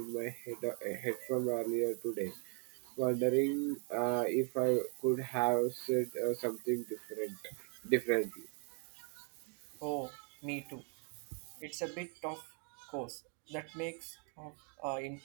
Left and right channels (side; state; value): left; quieter; 39.3 dB